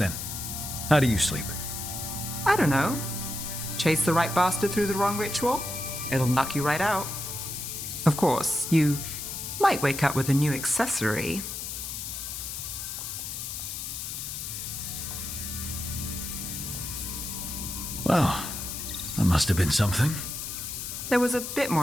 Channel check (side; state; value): left; noise; hiss, 6 dB below the sound